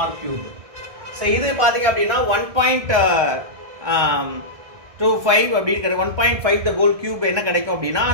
r cube. So இது பார்த்தீங்க அப்படின்னா 1.25 அப்படின்னு 1.5 the whole cube என்ன கிடைக்கும் அப்படின்னா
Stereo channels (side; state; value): left; late; 1.6 ms